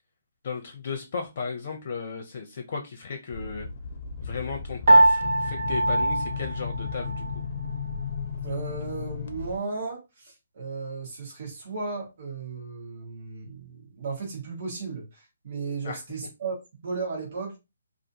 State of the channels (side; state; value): both; inverted; correlation -0.87